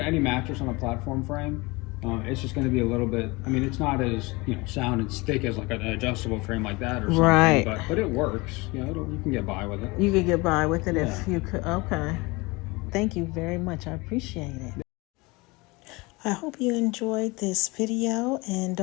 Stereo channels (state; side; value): quieter; right; 24.6 dB